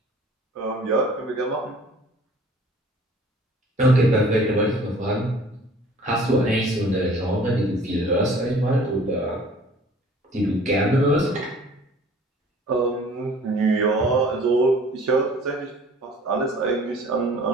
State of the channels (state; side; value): normal; both; correlation 0.50